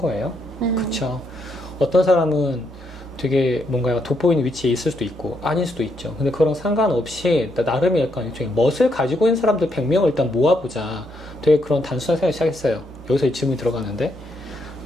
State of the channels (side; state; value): both; normal; correlation 0.77